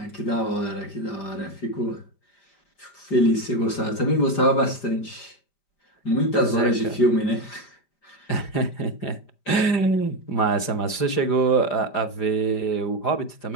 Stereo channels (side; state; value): right; late; 4.9 ms